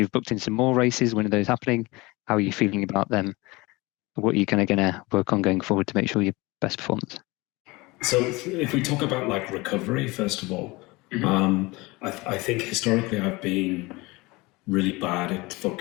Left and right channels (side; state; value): right; quieter; 23.1 dB